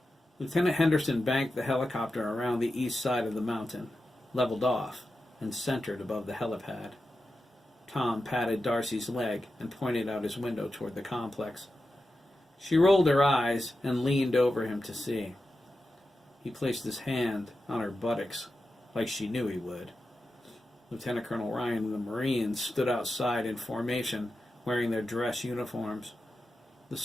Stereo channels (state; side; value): normal; both; correlation 0.91